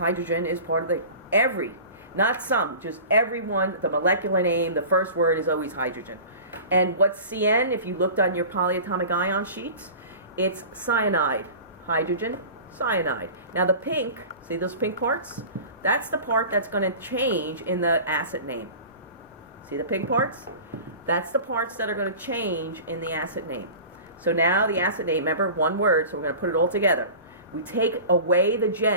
is part of not some, just every one. The molecular name, the first word is always hydrogen. And what's CN, if you looked on your polyatomic ion sheet, it's cyanide. Hydrogen, cyanide. Now the pink, see those pink parts? That's the part that's going to change in the acid name. See the pink parts? That's the parts that are going to change in the acid name. So now the acid name, remember, one word, so we're going to put it all together. We take away the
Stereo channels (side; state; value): both; inverted; correlation -0.38